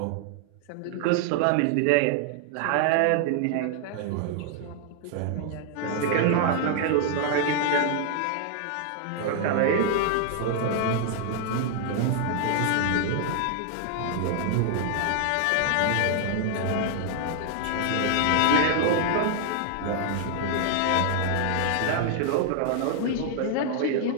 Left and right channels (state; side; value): different; both; correlation 0.00